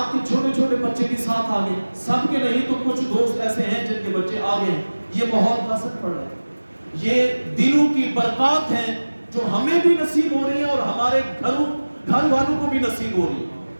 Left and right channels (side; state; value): both; inverted; correlation -1.00